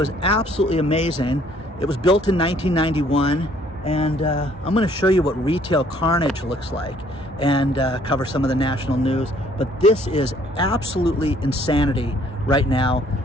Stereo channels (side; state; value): both; normal; correlation 0.62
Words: absolutely amazing. It was built in 1991. And I'm going to show you what retail carnage looks like and cover some of the national news. But this is absolutely insanity right now